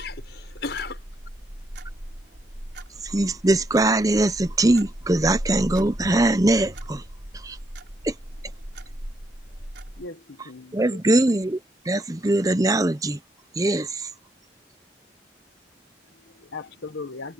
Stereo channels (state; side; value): normal; both; correlation 0.76